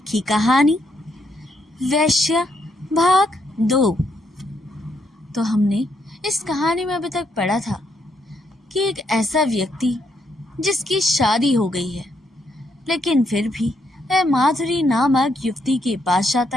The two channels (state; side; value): normal; both; correlation 0.76